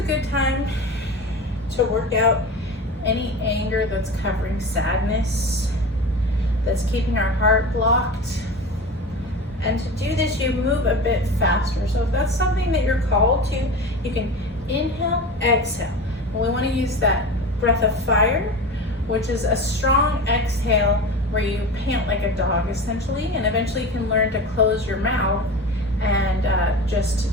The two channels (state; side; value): normal; both; correlation 0.30